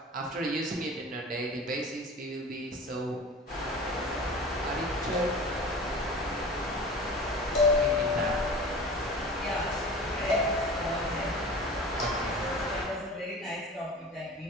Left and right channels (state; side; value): normal; both; correlation 0.37